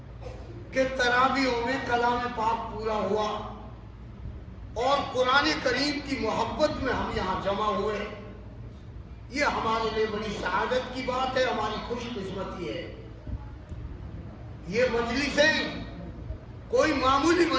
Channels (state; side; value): identical; both; correlation 1.00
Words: کہ تراویحوں میں کلام پاک پورا ہوا اور قرآن کریم کی محبت میں ہم یہاں جمع ہوئے. یہ ہمارے لیے بڑی سعادت کی بات ہے، ہماری خوش قسمتی ہے. یہ مجلسیں کوئی معمولی